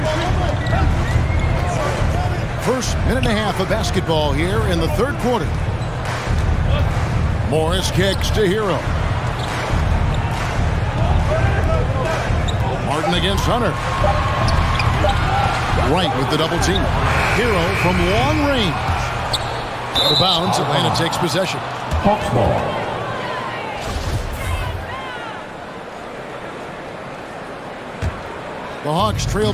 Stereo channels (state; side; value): identical; both; correlation 1.00